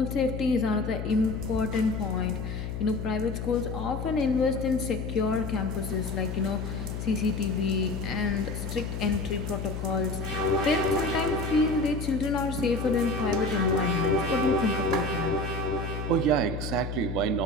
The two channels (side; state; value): left; noise; hum, 5 dB below the sound